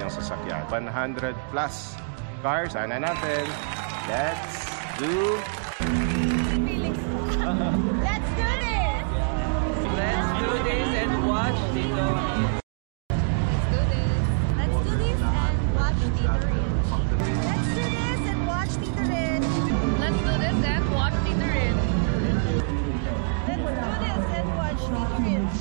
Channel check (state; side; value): silent; left; digital silence